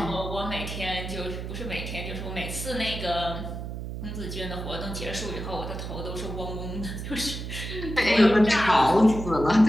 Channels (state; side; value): noise; right; hum, 7 dB below the sound